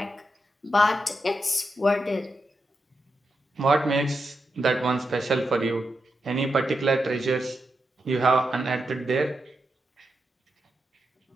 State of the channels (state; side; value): normal; both; correlation 0.86